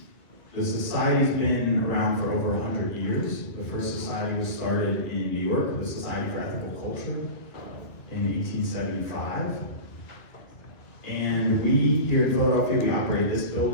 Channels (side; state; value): right; late; 2.1 ms